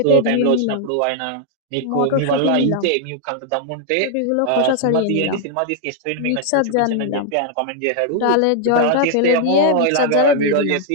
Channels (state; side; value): different; both; correlation 0.00